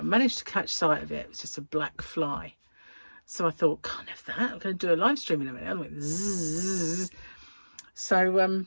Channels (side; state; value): both; inverted; correlation -1.00